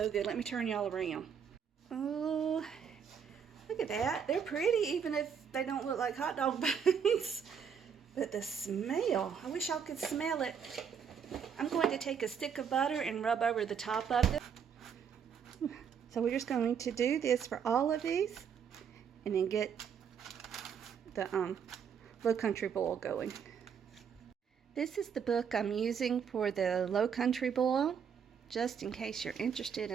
good. Let me turn y'all around. Oh, look at that. They're pretty even if they don't look like hot dog buns. But the smell, I wish y'all could smell it. I'm going to take a stick of butter and rub over the top of it. So we're just going to do this for all of these and then get the low country boil going. This is the book I'm using for the low country boil, just in case you're interested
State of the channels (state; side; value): quieter; left; 7.3 dB